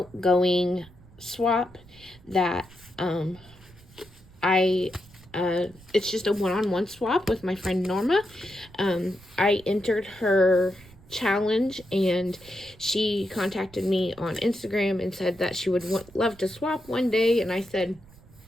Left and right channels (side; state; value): right; noise; rumble, 24 dB below the sound